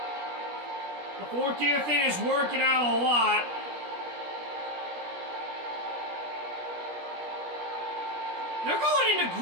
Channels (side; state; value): left; late; 17 ms